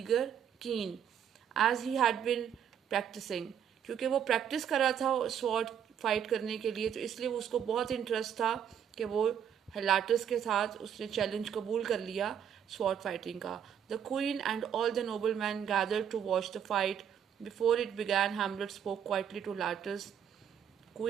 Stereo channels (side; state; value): left; quieter; 8.7 dB